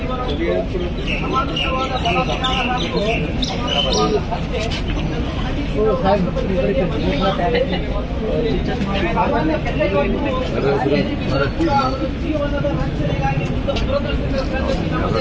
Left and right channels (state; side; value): identical; both; correlation 1.00